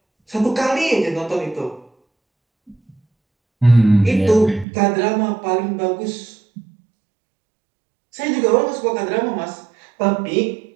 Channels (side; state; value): left; drops out; at 4.7 s